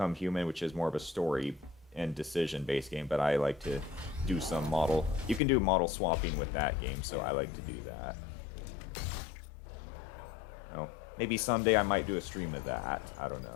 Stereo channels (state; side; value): drops out; right; at 5.4 s